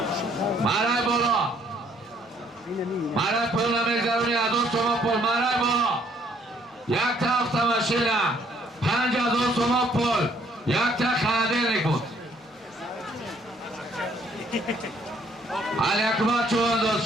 Maray bolo! Maray pulna mezaruni azon soman pul maray bolo! یک تا автомашина 5000 сомон пул یک تا холодильник буд Алякбар Чувандоз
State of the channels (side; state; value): both; normal; correlation 0.65